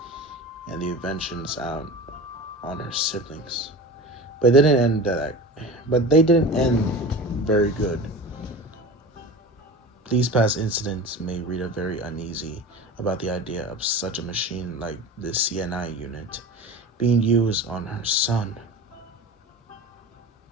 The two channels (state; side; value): normal; both; correlation 0.33